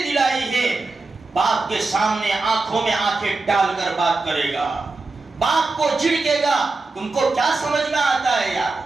دلائی ہے، باپ کے سامنے آنکھوں میں آنکھیں ڈال کر بات کرے گا، باپ کو جھڑکے گا۔ تم کو کیا سمجھ میں آتا ہے یار؟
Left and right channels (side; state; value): left; quieter; 3.6 dB